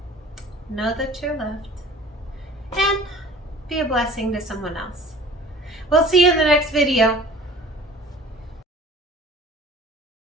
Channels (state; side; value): normal; both; correlation 0.46